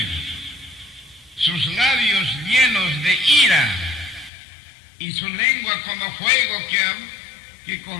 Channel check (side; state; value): right; drops out; at 4.3 s